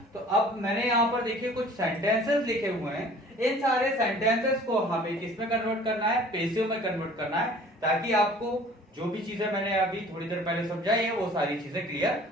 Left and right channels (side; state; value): both; normal; correlation 0.49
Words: तो अब मैंने यहां पर देखिए कुछ सेंटेंसेस लिखे हुए हैं। इन सारे सेंटेंसेस को हमें किसमें कन्वर्ट करना है? पैसिव में कन्वर्ट करना है, ताकि आपको जो भी चीजें मैंने अभी थोड़ी देर पहले समझाई है वो सारी चीजें क्लियर